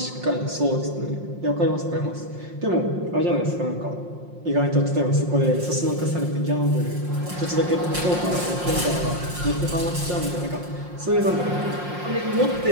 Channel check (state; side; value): late; left; 5.6 ms